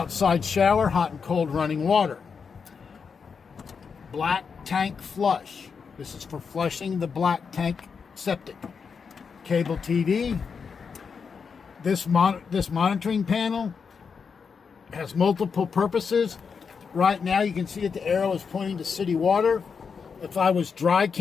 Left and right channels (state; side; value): quieter; right; 5.9 dB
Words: shower, hot and cold running water. Black tank flush. This is for flushing the black tank septic. Cable TV. This monitoring panel has multiple purposes. Right now you can see that the arrow is pointing to city water. If I was dry